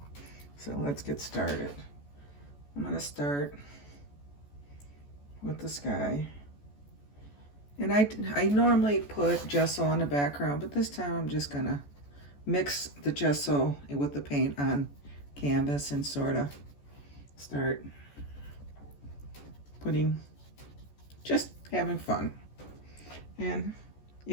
So let's get started. I'm going to start with the sky. And I normally put gesso on the background, but this time I'm just going to mix the gesso with the paint on canvas and sort of start just having fun. And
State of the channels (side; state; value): right; late; 14 ms